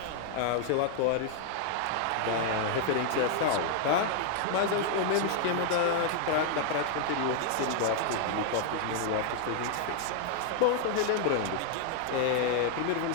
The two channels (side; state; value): both; different; correlation 0.00